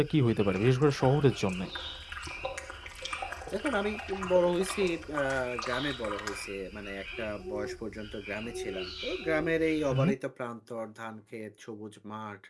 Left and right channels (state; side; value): identical; both; correlation 1.00